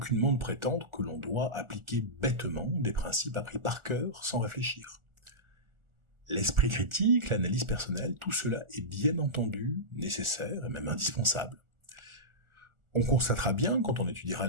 de prétendre que l'on doit appliquer bêtement des principes appris par cœur sans réfléchir. L'esprit critique, l'analyse personnelle, tout cela est bien entendu nécessaire et même indispensable. On constatera bien, quand on étudiera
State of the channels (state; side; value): late; left; 1.4 ms